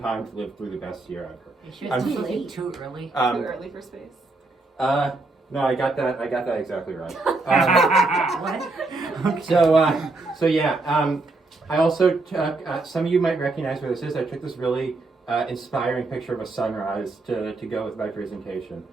to live through the best year ever." Too late, too early. Too early for space. No, I got that exactly right. What? So yeah. I also took, some of you might recognize where this is. I took this really inspiring picture of a sunrise to go with my presentation.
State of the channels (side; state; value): left; quieter; 3.3 dB